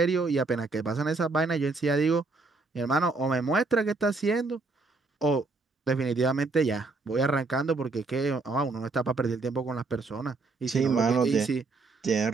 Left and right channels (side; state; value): left; quieter; 3.7 dB